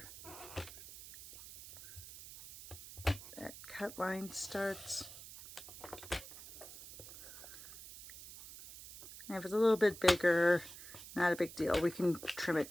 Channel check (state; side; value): noise; right; hiss, 15 dB below the sound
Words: that cut line starts. And if it's a little bit bigger, not a big deal. We can trim it